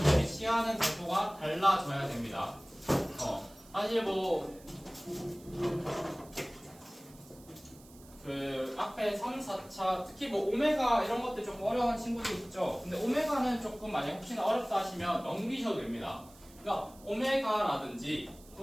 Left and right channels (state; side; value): noise; right; hiss, 24 dB below the sound